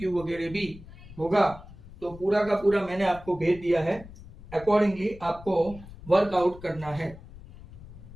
वगैरह भी होगा। तो पूरा का पूरा मैंने आपको भेज दिया है, अकॉर्डिंगली आपको वर्कआउट करना है।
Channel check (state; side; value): noise; left; rumble, 17 dB below the sound